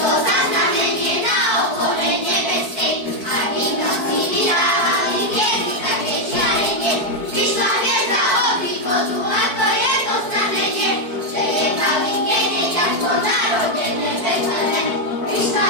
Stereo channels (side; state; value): left; late; 4.5 ms